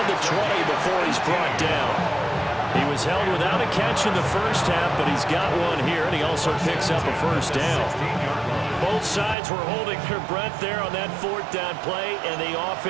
the 20 before he's brought down. He was held without a catch in the first half, but he's got one here, and he also picks up a first down. Both sides were holding their breath there on that 4th down play, and the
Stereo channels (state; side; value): drops out; left; at 9.3 s